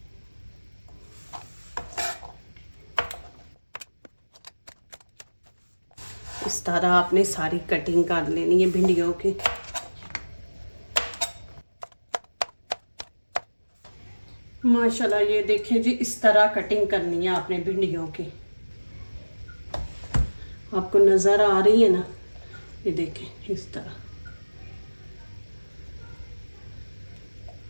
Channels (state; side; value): inverted; both; correlation -1.00